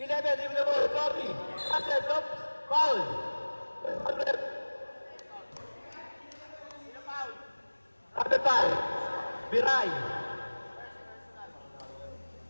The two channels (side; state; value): both; inverted; correlation -1.00